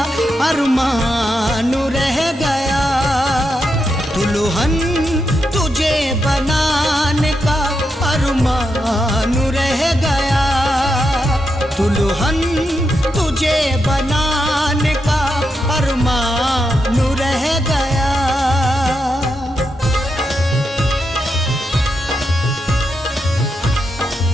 अरमान रह गया। दुल्हन तुझे बनाने का अरमान रह गया। दुल्हन तुझे बनाने का अरमान रह गया।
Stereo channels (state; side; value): normal; both; correlation 0.84